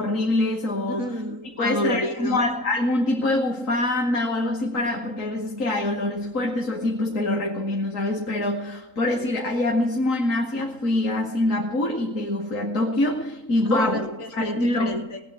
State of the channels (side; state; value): right; late; 3.8 ms